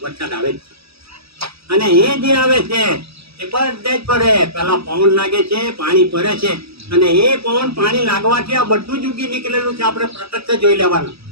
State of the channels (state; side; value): late; left; 0.77 ms